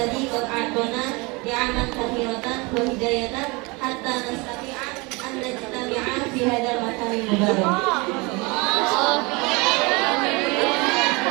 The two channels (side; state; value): left; quieter; 26.6 dB